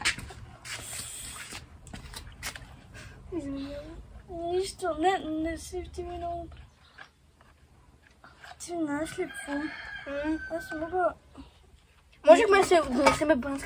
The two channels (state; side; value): identical; both; correlation 1.00